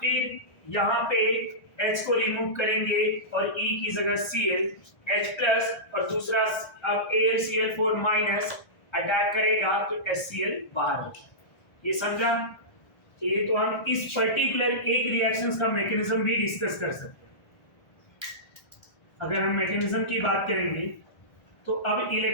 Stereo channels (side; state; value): right; late; 1.4 ms